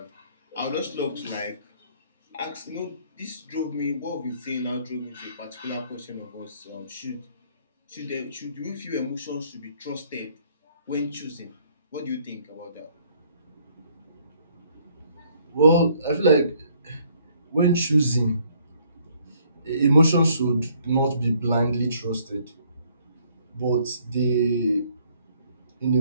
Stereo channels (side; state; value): both; inverted; correlation -0.64